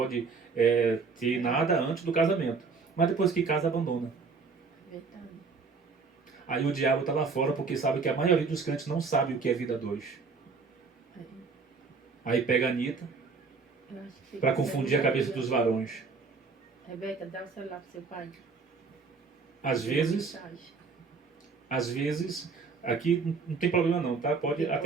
ter nada antes do casamento. Mas depois que casa, abandona. Verdade. Aí o diabo está lá fora porque sabe que a maioria dos crentes não sabe o que é vida dois. Aí pega a Anitta para confundir a cabeça dos varões. Rebeca, dá o celular pro seu pai. Às vezes, aqui não tem problema não, tá? Pode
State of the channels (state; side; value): quieter; left; 4.7 dB